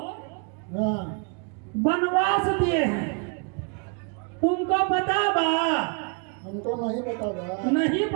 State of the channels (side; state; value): left; quieter; 37.6 dB